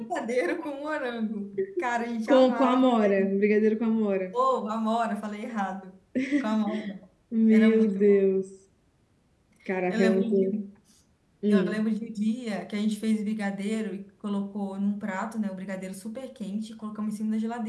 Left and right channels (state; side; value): identical; both; correlation 1.00